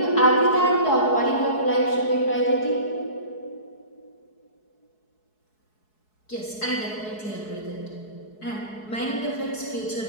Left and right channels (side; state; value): right; late; 4.7 ms